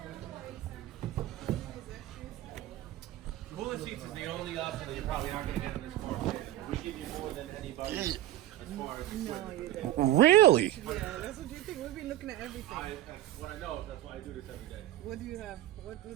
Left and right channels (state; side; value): quieter; left; 14.1 dB